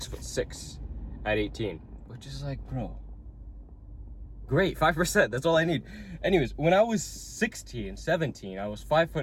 at 18. Which is like, bro, great, 5%, that's all I need. Anyways, when I was 16, 17, I was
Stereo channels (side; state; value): both; identical; correlation 1.00